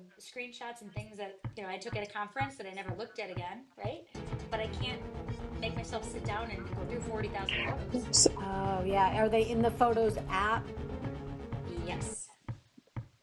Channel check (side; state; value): both; identical; correlation 1.00